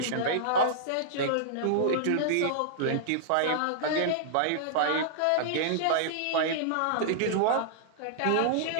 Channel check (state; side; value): different; both; correlation -0.01